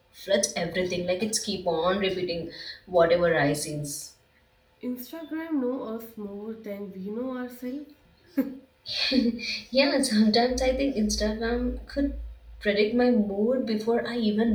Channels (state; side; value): identical; both; correlation 1.00